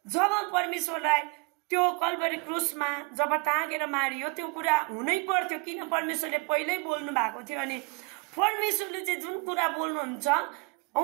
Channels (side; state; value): left; quieter; 30.1 dB